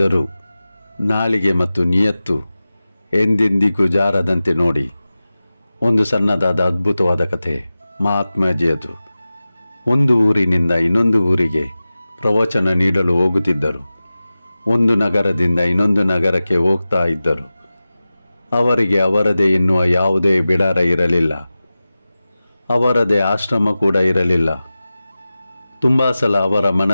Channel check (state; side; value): inverted; both; correlation -0.95